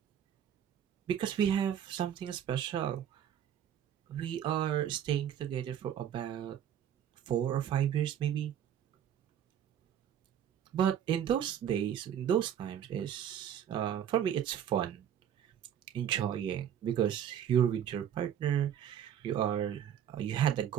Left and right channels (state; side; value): quieter; left; 9.6 dB